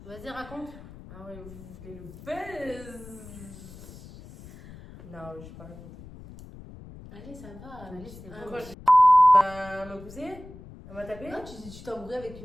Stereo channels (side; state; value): left; noise; rumble, 17 dB below the sound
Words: Vas-y, raconte. Ah ouais, vous voulez le buzz? Non, je vais pas raconter. Allez, ça va. Allez, c'est bon. Pourquoi elle m'a poussé? Elle m'a tapé? Non, tu t'es embrouillé avec